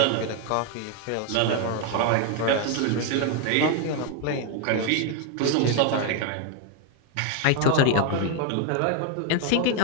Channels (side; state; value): both; different; correlation 0.01